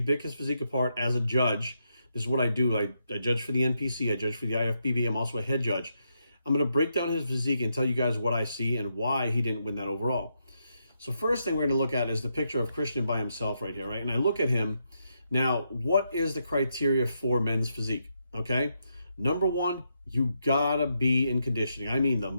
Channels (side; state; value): both; inverted; correlation -0.81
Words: pick his physique apart as a judge. This is what I do. I judge for the NPC. I judge for the IFBB. I'm also a head judge. I'm going to break down his physique and tell you guys what I see and why he didn't win that overall. So first thing we're going to look at is the picture of Christian by himself right here, right? And I look at him. Now, what is the criteria for men's physique? Okay. Number one, you gotta be in conditioning. I mean, the